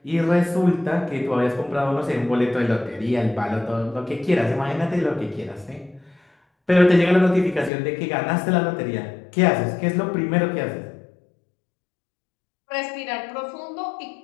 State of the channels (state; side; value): drops out; right; at 7.7 s